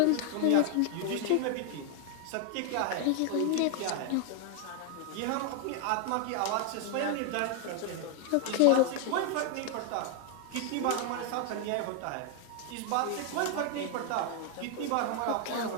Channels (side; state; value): both; different; correlation 0.00